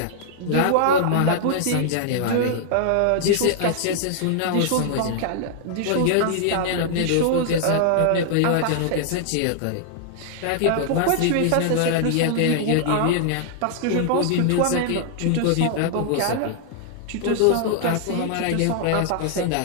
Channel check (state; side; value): different; both; correlation -0.01